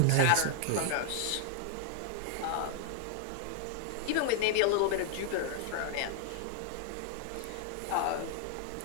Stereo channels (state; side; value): different; both; correlation 0.00